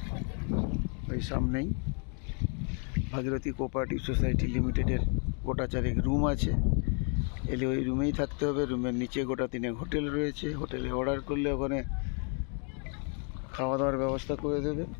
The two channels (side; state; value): right; quieter; 39.9 dB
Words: ওই সামনেই, ভাগীরথী কোঅপারেটিভ সোসাইটি লিমিটেডের গোটা চারেক রুম আছে। এলে ওই রুমেই থাকতে হবে। রুমের নিচে গোটা তিনেক হোটেল রয়েছে। হোটেলে অর্ডার করলে ওখানে খাওয়া দাওয়ার ব্যবস্থা করে দেবে।